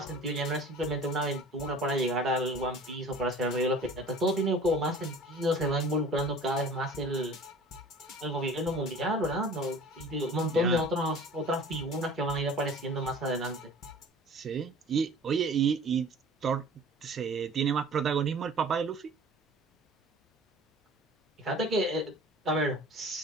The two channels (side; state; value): both; normal; correlation 0.44